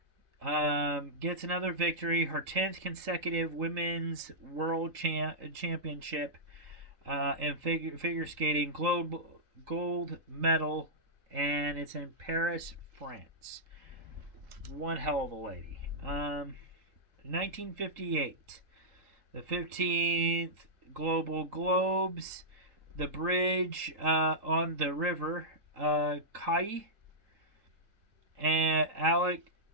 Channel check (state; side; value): late; left; 3.8 ms